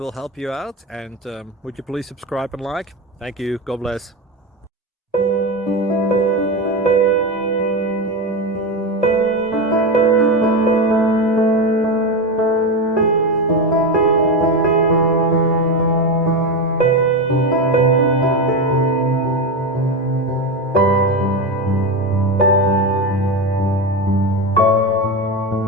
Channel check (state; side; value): normal; both; correlation 0.16